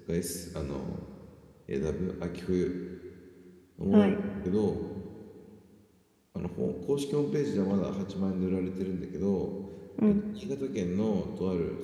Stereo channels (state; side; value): identical; both; correlation 1.00